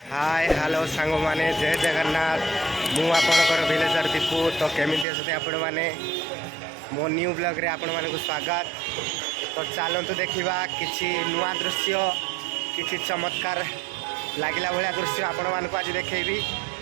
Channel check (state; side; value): drops out; left; at 5.1 s